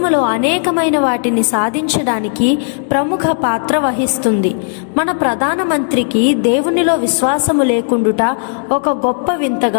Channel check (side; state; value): right; silent; 70 dB below the other